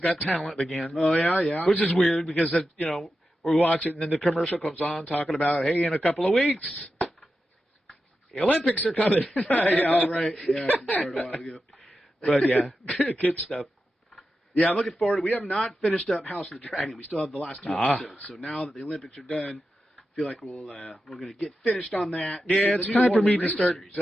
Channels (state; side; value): normal; both; correlation 0.90